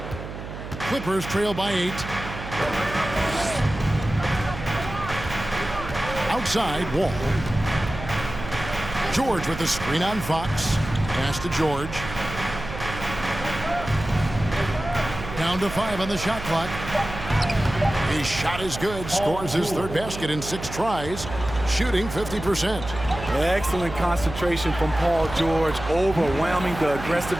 Clippers trail by 8. Outside, Wall. George with the screen on Fox. Pass to George. Down to 5 on the shot clock. His shot is good. Scores his third basket in 6 tries. Shooting 50%. Excellent concentration from Paul George, overwhelming the aggressive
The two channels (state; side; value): noise; right; hum, 10 dB below the sound